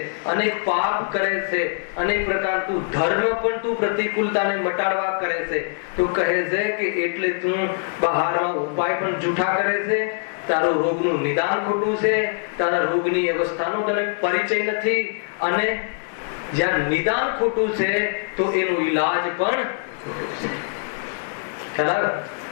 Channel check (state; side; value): silent; right; 63 dB below the other